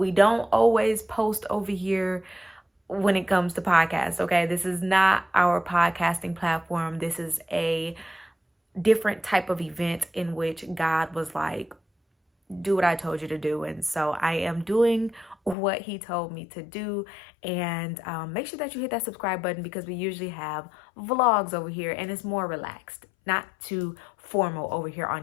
don't always post over here when it comes to podcasts, okay? This is not our podcasting platform. This is a different type of event in which God was like, do what I told you to do. And so I am doing what he told me to do. And make sure that you hit that subscribe button because we usually have vlogs over here and it's more relaxed, not too formal over here on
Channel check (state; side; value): drops out; right; at 15.6 s